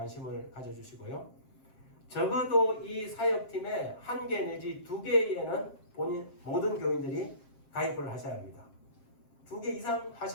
가져주시고요. 적어도 이 사역팀에 1개 내지 2개에는 모든 교인들이 가입을 하셔야 합니다. 2개 이상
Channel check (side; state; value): right; late; 7.5 ms